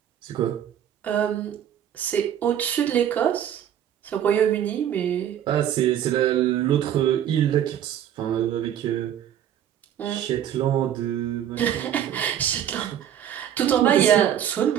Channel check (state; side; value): quieter; left; 10.2 dB